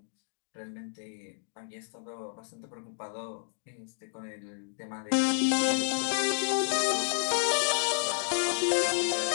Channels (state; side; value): silent; right; digital silence